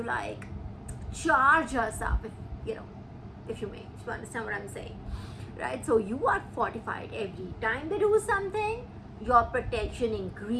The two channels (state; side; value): identical; both; correlation 1.00